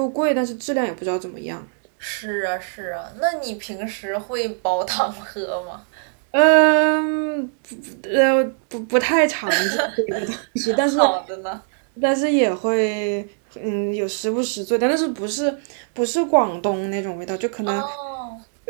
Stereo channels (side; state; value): left; silent; digital silence